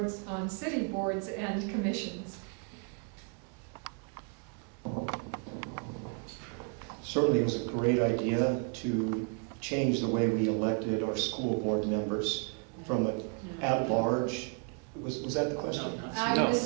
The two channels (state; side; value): quieter; left; 36.4 dB